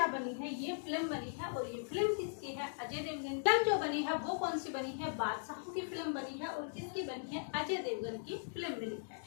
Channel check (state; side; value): silent; right; digital silence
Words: बनी है, ये फिल्म बनी है। और ये फिल्म किसकी है, अजय देवगन। फिल्म जो बनी है वो कौन सी बनी है, बादशाह की फिल्म बनी है। और किसकी बनी है, अजय देवगन की फिल्म बनी है।